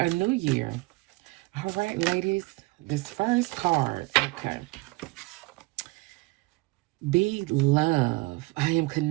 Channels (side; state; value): left; quieter; 23.4 dB